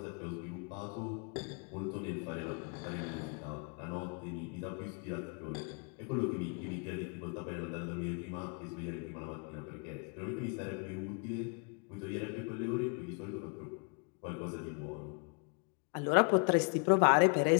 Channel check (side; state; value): right; quieter; 37.8 dB